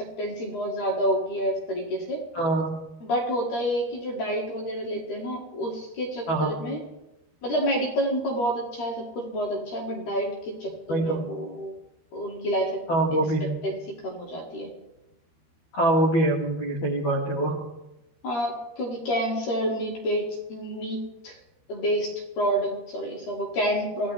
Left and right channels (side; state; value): right; late; 13 ms